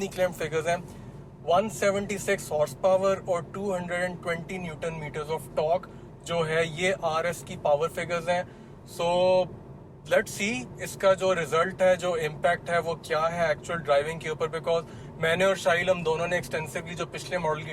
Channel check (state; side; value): identical; both; correlation 1.00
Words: क्लेम फिगर्स हैं। 176 हॉर्स पावर और 220 न्यूटन मीटर्स ऑफ टॉर्क जो है, ये आरएस की पावर फिगर्स हैं। सो लेट्स सी इसका जो रिजल्ट है, जो इम्पैक्ट है वो क्या है एक्चुअल ड्राइविंग के ऊपर। बिकॉज मैंने और शाहिल हम दोनों ने एक्सटेंसिवली जो पिछले मॉडल